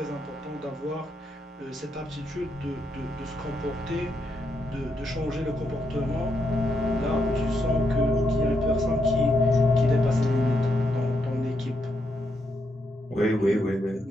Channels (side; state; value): both; normal; correlation 0.80